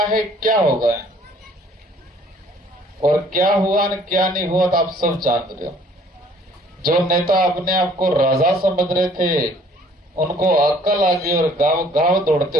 क्या होगा और क्या हुआ न क्या नहीं हुआ तो आप सब जान रहे हो। जो नेता अपने आप को राजा समझ रहे थे उनको अक्ल आ गई और गांव दौड़ते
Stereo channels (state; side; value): normal; both; correlation 0.57